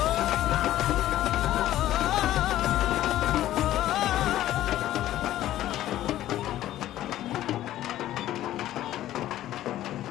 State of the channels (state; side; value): quieter; right; 13.6 dB